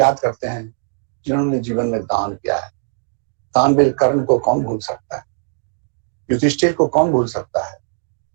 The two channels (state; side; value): silent; left; digital silence